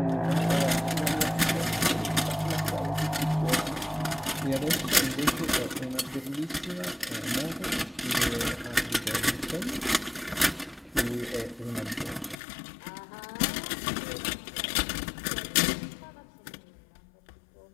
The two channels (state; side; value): drops out; right; at 12.4 s